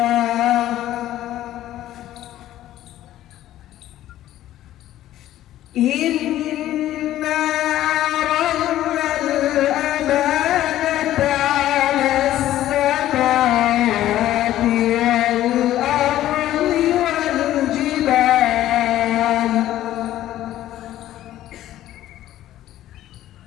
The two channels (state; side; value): quieter; right; 13.4 dB